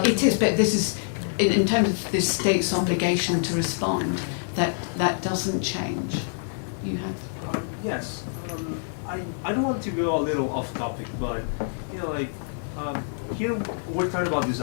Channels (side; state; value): right; silent; digital silence